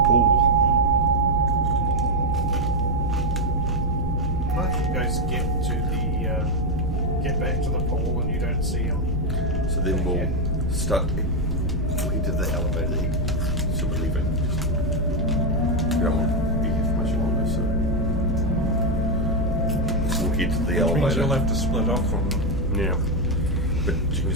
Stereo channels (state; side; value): normal; both; correlation 0.04